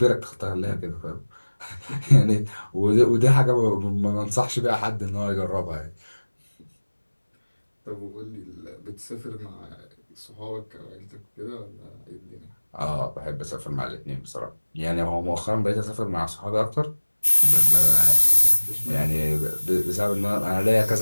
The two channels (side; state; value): both; inverted; correlation -1.00